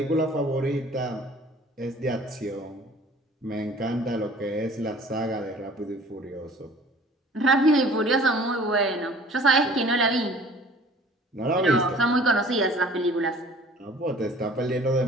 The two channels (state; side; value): normal; both; correlation 0.50